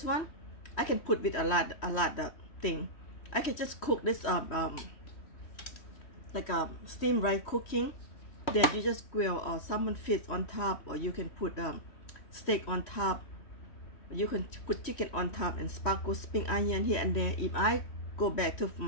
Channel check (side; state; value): right; late; 3.1 ms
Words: one, I can put with a lot of thing. I can just cook this like a steam rice cooking, then you just grill or salmon fish on top, or you can put steak on top, you can put chicken on top, and sparkle spring onion here and there. If I go back to